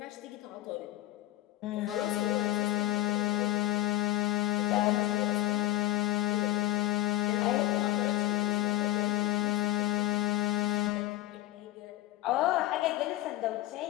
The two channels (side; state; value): right; quieter; 15.2 dB